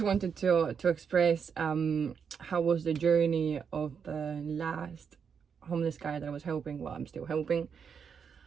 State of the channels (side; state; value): left; quieter; 6.7 dB